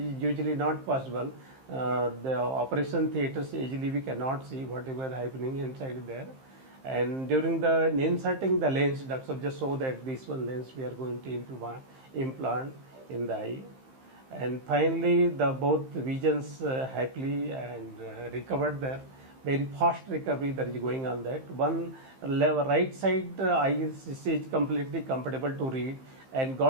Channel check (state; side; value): late; left; 15 ms